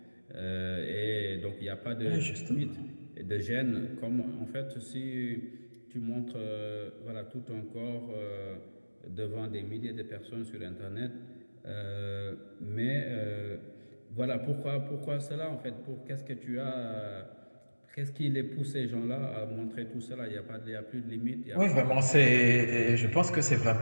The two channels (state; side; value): inverted; both; correlation -1.00